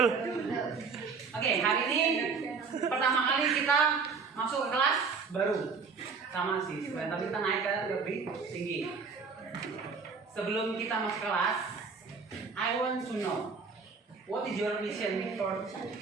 Oke, hari ini pertama kali kita masuk ke kelas baru sama sih, tapi kita naik ke lebih tinggi. Sebelum kita masuk kelas, I want to know what is your mission for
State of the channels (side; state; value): left; quieter; 5.1 dB